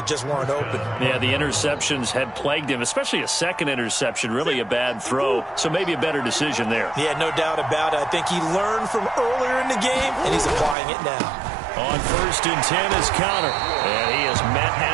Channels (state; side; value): drops out; left; at 10.8 s